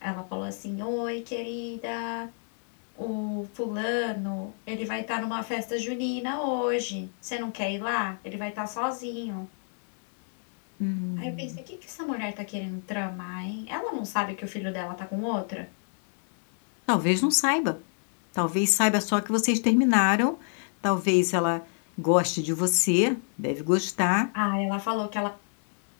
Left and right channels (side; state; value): right; silent; 56 dB below the other